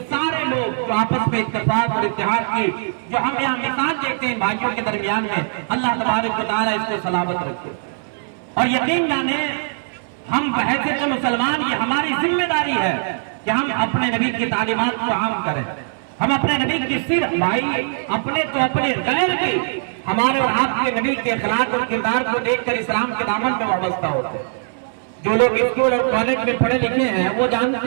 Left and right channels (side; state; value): left; silent; 60 dB below the other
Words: سارے لوگ جو آپس میں اتفاق اور اتحاد کی جو ہم یہاں مثال دیکھتے ہیں بھائیوں کے درمیان میں، اللہ تبارک و تعالیٰ اس کو سلامت رکھے۔ اور یقین جانے ہم بحیثیت مسلمان یہ ہماری ذمہ داری ہے کہ ہم اپنے نبی کی تعلیمات کو عام کریں، ہم اپنے نبی کی صرف بھائی اپنے تو اپنے غیر کی، ہمارے اور آپ کے نبی کے اخلاق اور کردار کو دیکھ کر اسلام کے دامن میں وابستہ ہوتے ہیں۔ جو لوگ اسکول اور کالج میں پڑھے لکھے ہیں وہ